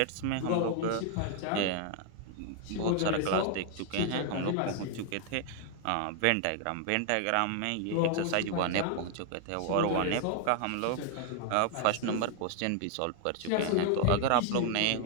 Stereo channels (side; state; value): both; different; correlation 0.00